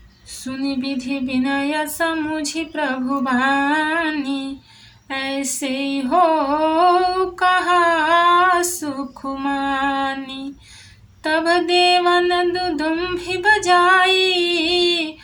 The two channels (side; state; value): both; identical; correlation 1.00